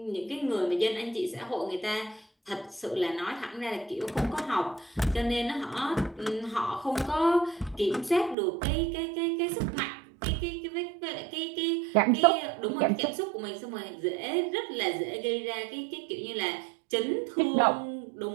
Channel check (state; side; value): drops out; left; at 8.3 s